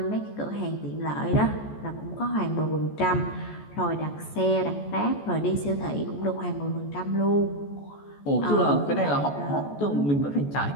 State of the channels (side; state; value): right; late; 14 ms